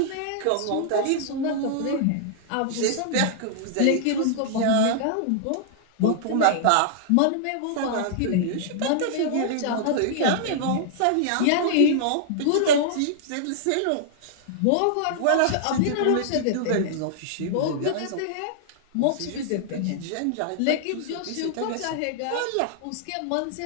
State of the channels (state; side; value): different; both; correlation -0.01